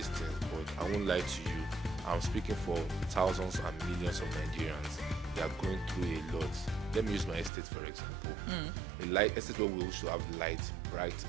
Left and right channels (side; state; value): left; drops out; at 7.5 s